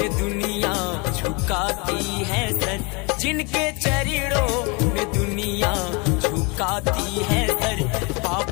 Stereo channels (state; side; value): quieter; right; 29.7 dB